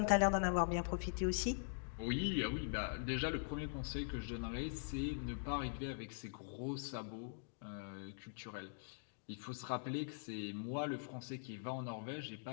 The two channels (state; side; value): silent; right; digital silence